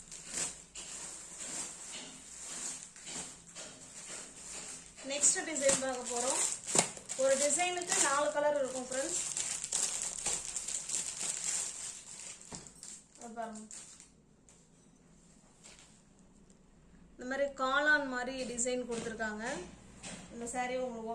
நெக்ஸ்ட் டிசைன் பார்க்க போறோம். ஒரு டிசைனுக்கு 4 கலர் இருக்கும் ஃப்ரெண்ட்ஸ். பாருங்க, இந்த மாதிரி காளான் மாதிரி டிசைன் கொடுத்துருக்காங்க. இந்த சாரியை உங்களுக்கு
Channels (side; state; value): both; identical; correlation 1.00